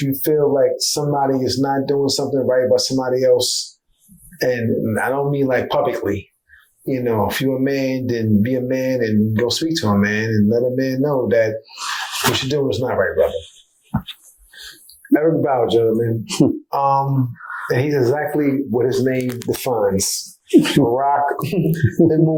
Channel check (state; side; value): identical; both; correlation 1.00